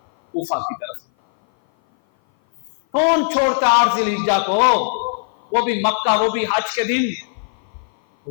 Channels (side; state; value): right; silent; 57 dB below the other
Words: کوفہ کی طرف۔ کون چھوڑتا 8 ذی الحجہ کو، وہ بھی مکہ، وہ بھی حج کے دن؟